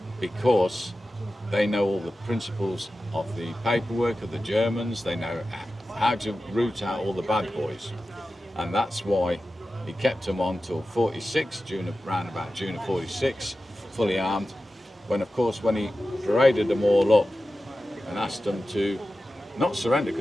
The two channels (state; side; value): normal; both; correlation 0.94